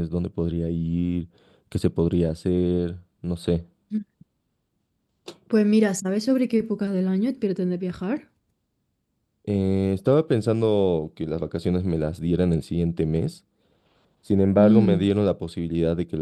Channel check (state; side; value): identical; both; correlation 1.00